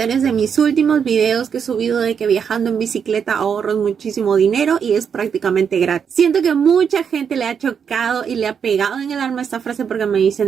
de mis últimos videos que he subido de que viajando en bicicleta ahorras muchísimo dinero y es prácticamente gratis. Siento que mucha gente le ha chocado y le ha pegado en el alma esta frase porque me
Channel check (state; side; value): quieter; left; 7.1 dB